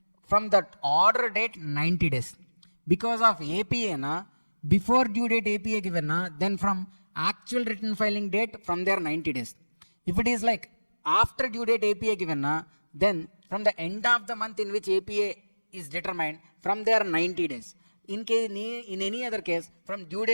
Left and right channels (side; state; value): both; inverted; correlation -1.00